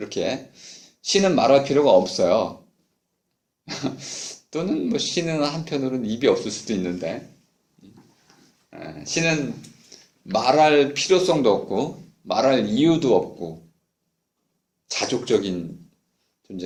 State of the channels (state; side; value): identical; both; correlation 1.00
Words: 신은 말할 필요가 없어요. 또는 뭐 신은 한편으로는 입이 없을 수도 있는데, 신은 말할 필요성도 없고, 말할 이유도 없고, 자족적인